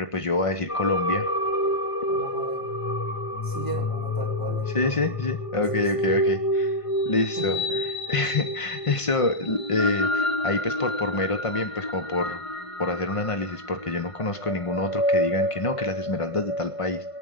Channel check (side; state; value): right; late; 1.5 ms